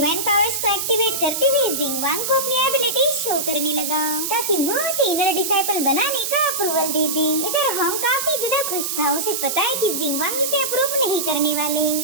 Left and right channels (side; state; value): right; noise; hiss, 2 dB below the sound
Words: पावर्स को एक्टिवेट करते हुए जिंगवांग को अपनी एबिलिटी शो करने लगा ताकि वो उसे इनर डिसाइपल बनाने का अप्रूवल दे दे। इधर हॉन्ग काफी ज्यादा खुश था, उसे पता है कि जिंगवांग इसे अप्रूव नहीं करने वाले।